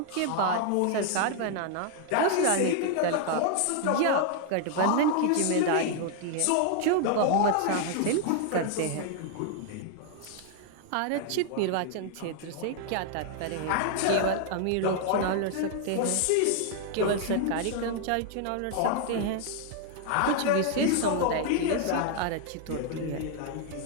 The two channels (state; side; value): different; both; correlation 0.00